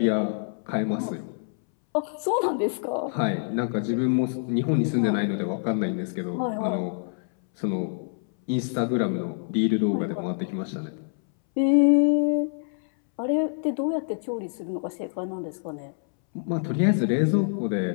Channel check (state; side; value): silent; right; 61 dB below the other